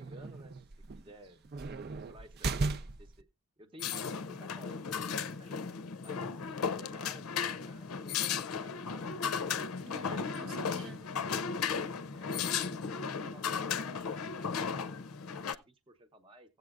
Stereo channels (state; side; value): quieter; right; 4.2 dB